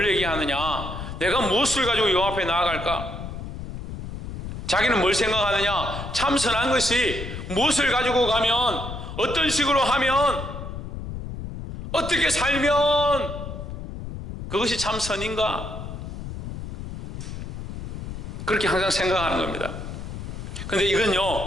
얘기하느냐, 내가 무엇을 가지고 여호와 앞에 나아갈까? 자기는 뭘 생각하느냐, 참 선한 것이 무엇을 가지고 가면, 어떤 식으로 하면, 어떻게 살면 그것이 참 선인가? 그렇게 항상 생각하는 겁니다. 그런데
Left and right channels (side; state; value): left; noise; rumble, 8 dB below the sound